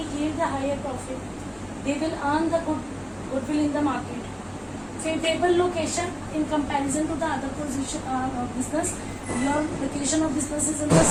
yield the higher profit. They will earn the goodwill in the market. Favorable location in comparison to the other position of business. Your location of business is in the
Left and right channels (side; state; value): both; identical; correlation 1.00